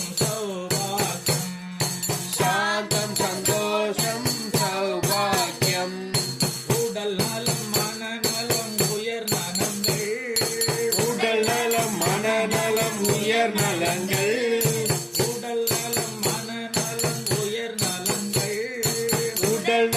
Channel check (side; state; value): both; identical; correlation 1.00